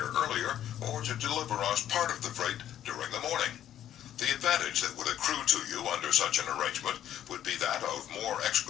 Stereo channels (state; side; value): quieter; right; 11.1 dB